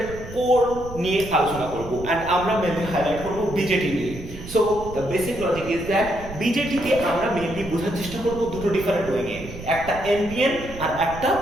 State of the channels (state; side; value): noise; right; rumble, 13 dB below the sound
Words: কোর নিয়ে আলোচনা করব, অ্যান্ড আমরা মেনলি হাইলাইট করব বিজেটি নিয়ে। So the basic logic is that বিজেটিকে আমরা মেনলি বোঝার চেষ্টা করব দুটো ডিফারেন্ট ওয়েতে, একটা এনপিএন আর একটা